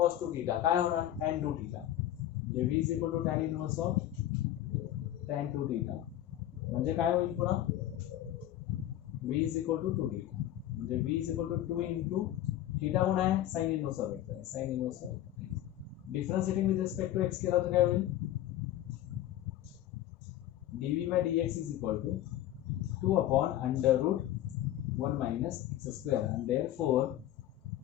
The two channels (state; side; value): quieter; right; 12.9 dB